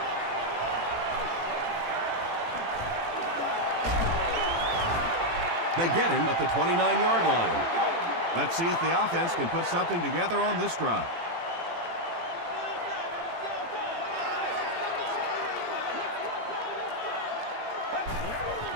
They get him at the 29-yard line. Let's see if the offense can put something together on this drive.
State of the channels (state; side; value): late; left; 18 ms